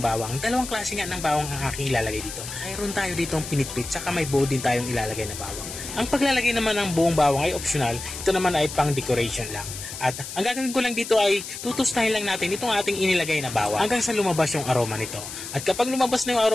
Dalawang klase nga ng bawang ang aking ilalagay dito. Mayroon tayo ditong pinitpit saka may buo din tayong ilalagay na bawang. Ang paglalagay naman ng buong bawang ay optional. Ito naman ay pang decoration lang. At ang gagawin ko lang dito ay tutustahin lang natin itong ating inilagay na bawang hanggang sa lumabas yung aroma nito. At kapag lumabas na yung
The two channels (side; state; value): left; noise; hiss, 9 dB below the sound